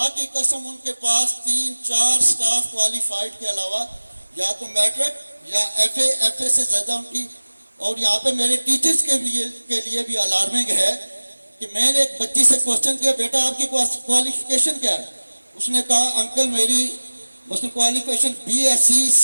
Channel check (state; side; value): inverted; both; correlation -1.00